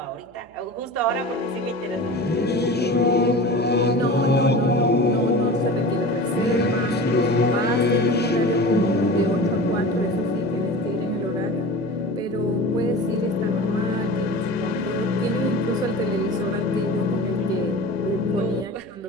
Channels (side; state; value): right; noise; hum, 29 dB below the sound